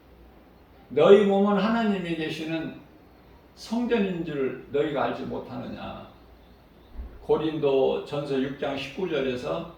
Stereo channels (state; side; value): identical; both; correlation 1.00